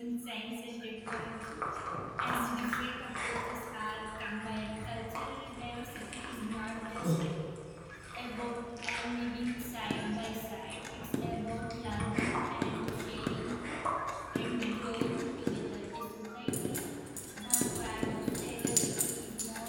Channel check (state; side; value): identical; both; correlation 1.00